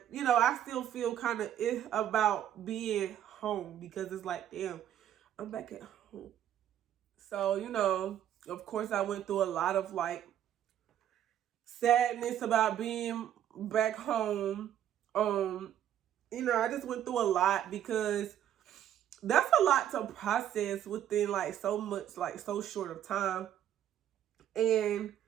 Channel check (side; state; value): left; quieter; 10.8 dB